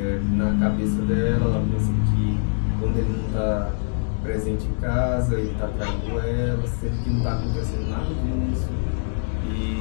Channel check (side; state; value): right; silent; digital silence